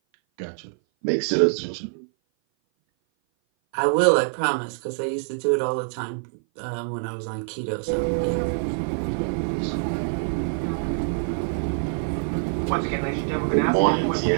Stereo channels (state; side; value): silent; left; 57 dB below the other